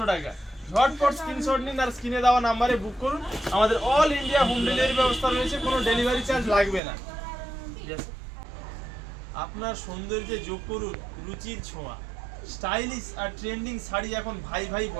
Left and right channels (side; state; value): left; drops out; at 6.8 s